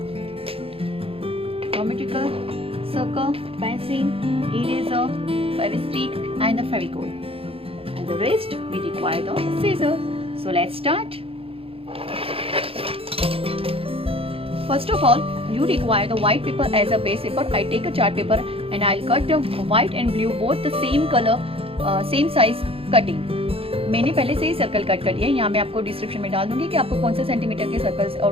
geometrical circle, pencil, eraser, fevistick and the fevicol. And the rest we require the scissors. So let's start. First of all, you require the white paper as a base paper. I take a chart paper and I'll cut the white and blue both the same color, same size cutting. मैंने पहले से ही circle cut कर लिया है. यहाँ मैं आपको description में डाल दूंगी कि आपको कौन से सेंटीमीटर के सर्कल्स और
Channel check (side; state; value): left; late; 0.27 ms